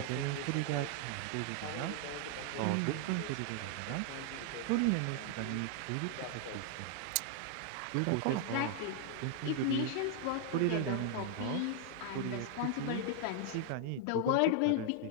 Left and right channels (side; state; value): both; different; correlation 0.00